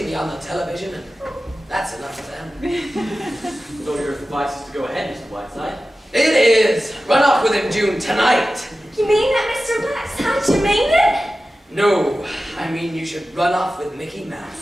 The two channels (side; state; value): both; normal; correlation 0.94